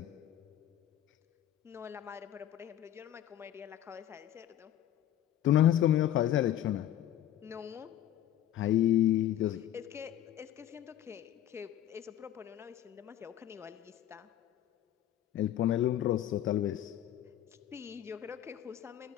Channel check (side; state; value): right; quieter; 11.8 dB